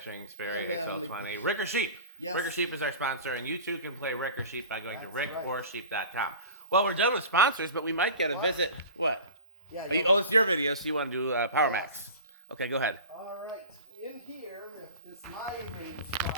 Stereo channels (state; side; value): inverted; both; correlation -0.36